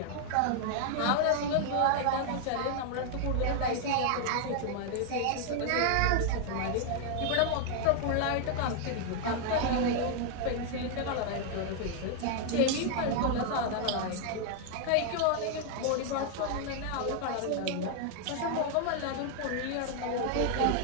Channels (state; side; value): different; both; correlation 0.00